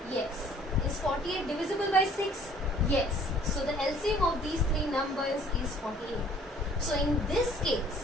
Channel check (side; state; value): both; normal; correlation 0.56